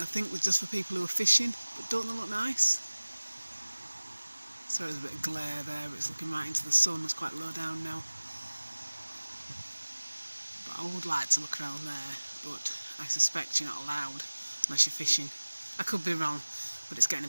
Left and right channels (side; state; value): both; inverted; correlation -1.00